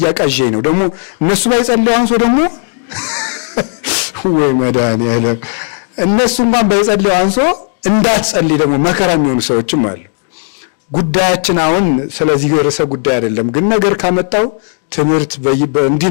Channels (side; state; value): right; silent; 60 dB below the other